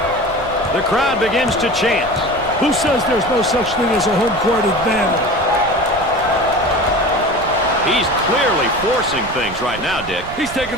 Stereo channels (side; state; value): right; noise; rumble, 16 dB below the sound